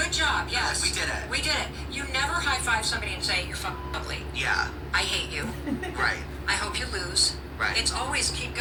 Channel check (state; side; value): identical; both; correlation 1.00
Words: job, yes. Like, we did it. We did it. You never high-five somebody and say, you're fucking ugly. Yeah. I hate you. Right. I hope you lose. Right. It's always keep